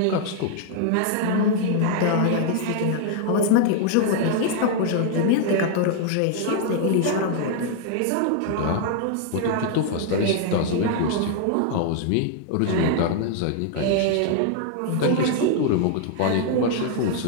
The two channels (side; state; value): both; different; correlation 0.00